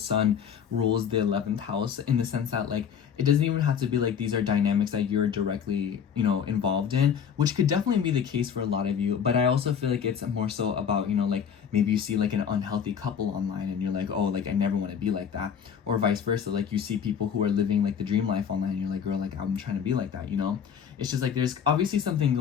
rules the 11th house, in the sense that like it doesn't even have to be like these are dynamics that you're directly, you know, involved in, which could definitely be the case for a lot of you. But I also feel like it's more so about, you know, like maybe you see like an unhealthy couple online and you're like, oh, like I never want to be like that, or vice versa. Like you see people who are living like the dream life online and you're like, girl, like I'm trying to be like that, you know. It's just like there's obviously something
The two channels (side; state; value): right; quieter; 7.6 dB